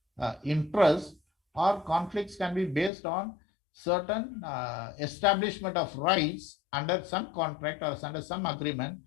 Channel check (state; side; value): drops out; right; at 2.9 s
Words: interest, or conflicts can be based on certain establishment of rights under some contract or under some agreement.